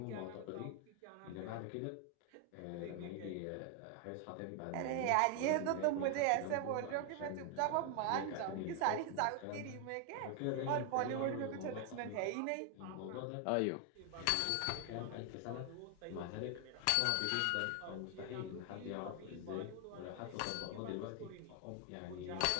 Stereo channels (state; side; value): different; both; correlation 0.00